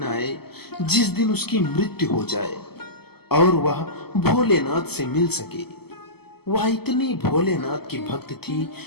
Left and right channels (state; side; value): late; right; 0.96 ms